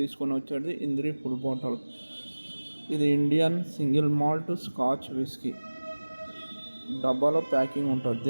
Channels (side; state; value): both; inverted; correlation -1.00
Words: వచ్చేది ఇంద్రి ఫుల్ బాటిల్. ఇది Indian single malt scotch whisky డబ్బాలో ప్యాకింగ్ ఉంటుంది.